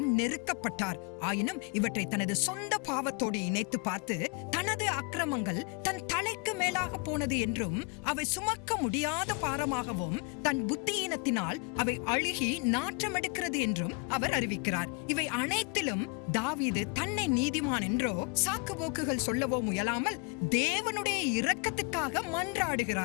நெருக்கப்பட்டார். ஆயினும் இவற்றை தனது சொந்த பாவத்தோடு இணைத்து பார்த்து தனது அக்கிரமங்கள் தன் தலைக்கு மேலாக போனது என்றும் அவை சுமக்க முடியாத பாரமாகவும் தன் புத்தியீனத்தினால் அவை அழுகி நாற்றமெடுக்கிறது என்றும் அவர் அறிவிக்கிறார். இவை அனைத்திலும் தாவீது தன்னை நீதிமான் என்றோ சாக்கு போக்குகள் சொல்லவோ முயலாமல் தேவனுடைய இரக்கத்துக்காக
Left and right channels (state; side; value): quieter; right; 29.9 dB